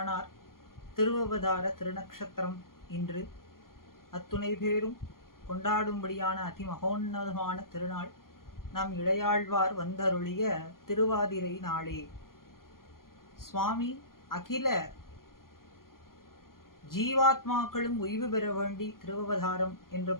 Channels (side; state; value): right; late; 0.92 ms